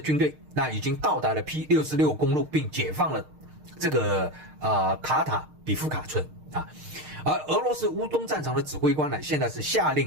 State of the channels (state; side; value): late; left; 6.5 ms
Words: 队已经到达了 P66 公路，并解放了这个卡塔比夫卡村而俄罗斯乌东战场的指挥官呢，现在是下令